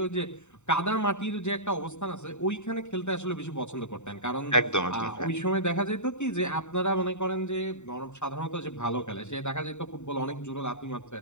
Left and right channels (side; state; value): right; late; 0.84 ms